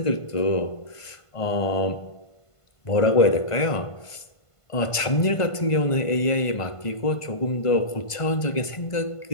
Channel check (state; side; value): late; right; 1.5 ms